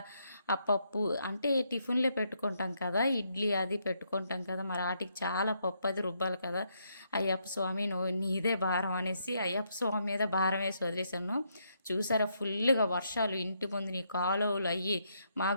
ఆ పప్పు అంటే టిఫిన్లే పెట్టుకుంటాం కదా, ఇడ్లీ అది పెట్టుకుంటాం కదా, మరి వాటికి చాలా పప్పు అది రుబ్బాలి కదా. అయ్యప్ప స్వామి నువ్వు నీదే భారం అనేసి అయ్యప్ప స్వామి మీద భారం వేసి వదిలేశాను. చూసారా ఫుల్గా వర్షాలు ఇంటి ముందు నీ కాలువలు అయ్యి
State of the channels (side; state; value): both; inverted; correlation -0.76